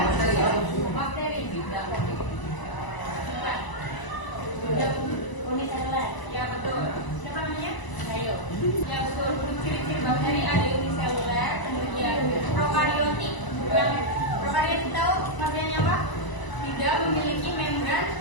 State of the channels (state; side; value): late; right; 1.0 ms